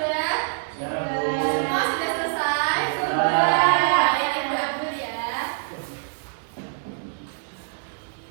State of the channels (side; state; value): left; silent; 62 dB below the other